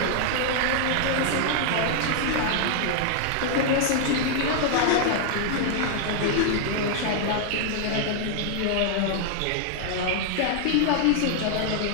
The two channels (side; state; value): both; different; correlation 0.00